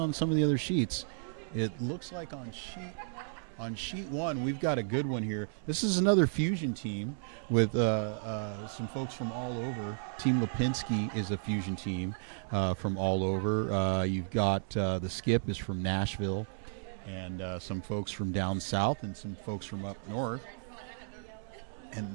some of the other sheets. It looks like on sheet one, we've got a good one here. This is another fusion team with some folks from all over. Team Lipinski is a fusion team from all over. You've got the Skip is from Nashville, and some folks from down south and some folks from up north. And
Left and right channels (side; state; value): left; silent; digital silence